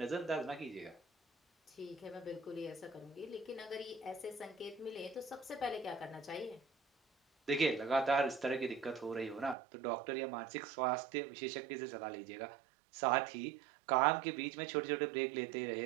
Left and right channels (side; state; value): left; drops out; at 9.6 s